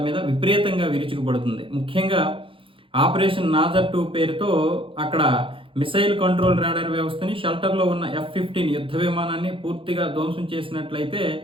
మీద విపరీతంగా విరుచుకుపడుతుంది. ముఖ్యంగా ఆపరేషన్ నాజర్ 2 పేరుతో అక్కడ మిసైల్ కంట్రోల్ రాడార్ వ్యవస్థని షెల్టర్లో ఉన్న F-15 యుద్ధ విమానాన్ని పూర్తిగా ధ్వంసం చేసినట్లయితే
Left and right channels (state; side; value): late; left; 0.25 ms